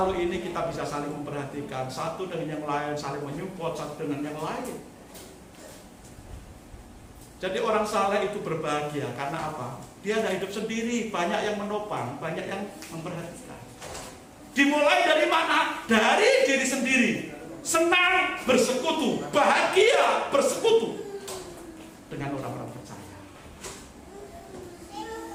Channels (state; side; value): identical; both; correlation 1.00